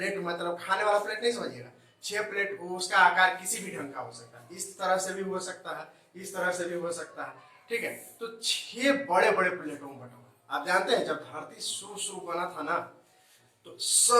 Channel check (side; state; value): both; identical; correlation 1.00